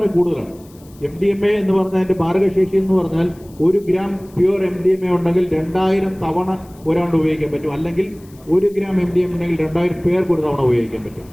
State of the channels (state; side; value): noise; left; hiss, 27 dB below the sound